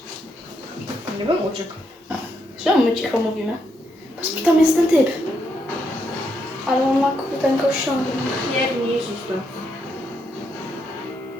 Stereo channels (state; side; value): normal; both; correlation 0.78